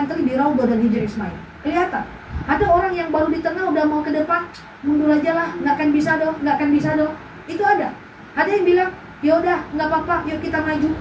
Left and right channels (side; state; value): both; identical; correlation 1.00